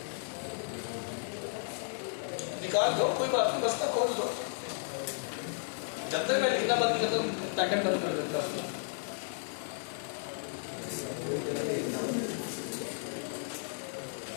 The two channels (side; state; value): right; silent; digital silence